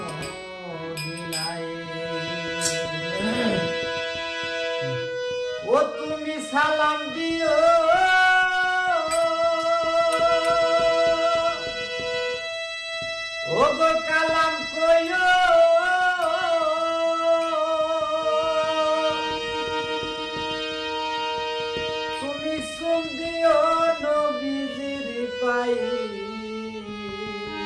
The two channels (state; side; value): identical; both; correlation 1.00